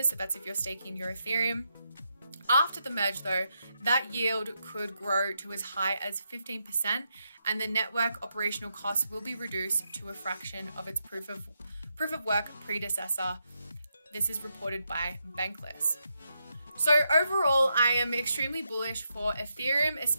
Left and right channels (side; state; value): both; inverted; correlation -0.83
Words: So that's if you're staking your Ethereum. After the merge though, that yield could grow to as high as 15%, and the network operational costs will be reduced to a fraction of its proof of work predecessor. This is reported by Bankless. So overall, I am extremely bullish for Ethereum,